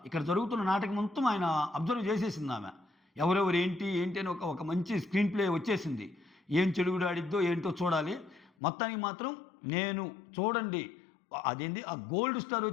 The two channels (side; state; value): right; drops out; at 8.5 s